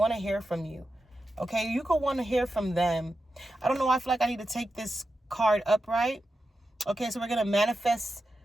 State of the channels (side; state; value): both; normal; correlation 0.90